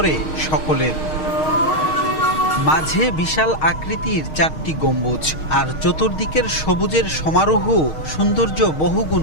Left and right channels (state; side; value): late; right; 6.4 ms